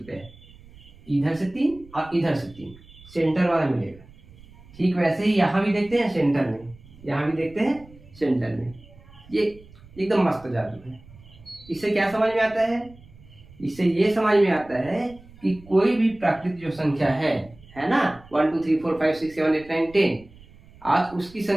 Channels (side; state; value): right; noise; rumble, 23 dB below the sound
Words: इधर से 3 और इधर से 3, सेंटर वाला मिलेगा। ठीक वैसे ही यहाँ भी देखते हैं सेंटर में, यहाँ भी देखते हैं सेंटर में। ये एकदम मस्त जादू है। इससे क्या समझ में आता है? इससे ये समझ में आता है कि कोई भी प्राकृतिक जो संख्या है ना, 1 2 3 4 5 6 7 8 9 10, आज उसकी